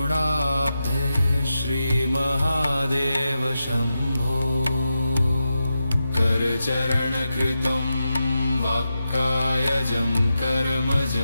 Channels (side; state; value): both; inverted; correlation -0.90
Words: श्रीमहादेव शम्भो। करचरणकृतं वाक्कायजं